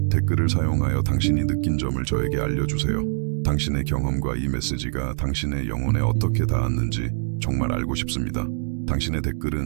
댓글을 사용하여 당신이 느낀 점을 저에게 알려주세요. 당신의 경험과 이 메시지가 당신의 영혼에 어떻게 닿았는지 정말 알고 싶습니다. 당신의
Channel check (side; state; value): left; silent; digital silence